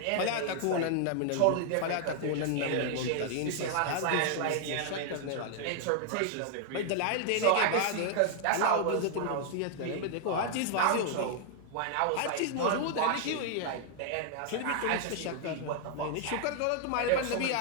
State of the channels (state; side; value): different; both; correlation 0.00